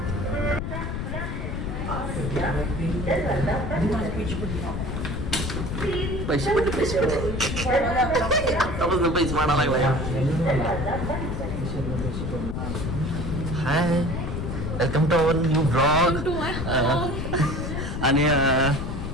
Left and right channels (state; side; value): noise; left; rumble, 4 dB below the sound